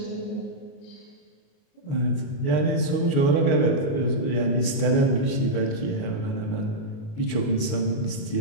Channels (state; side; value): late; right; 29 ms